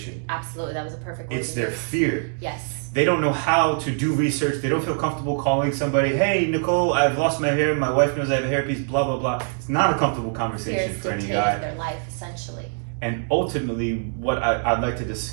Absolutely, that was a perfect word. It's their fear. Yes. They don't know how to do research. They don't feel comfortable calling somebody, hey, Nicole, I've lost my hair. My wife knows I have a hairpiece, blah, blah, blah. It's not a comfortable conversation for any guy. Their life, essentially. And ultimately, what I'd like to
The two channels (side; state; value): left; silent; 63 dB below the other